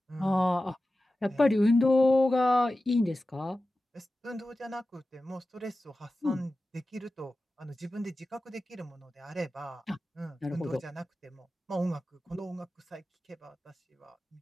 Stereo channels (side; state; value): both; normal; correlation 0.94